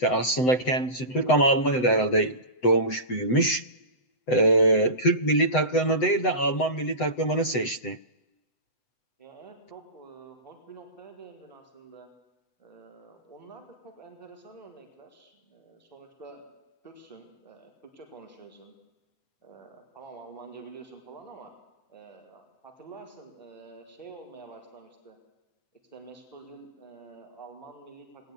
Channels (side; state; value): right; late; 7.9 ms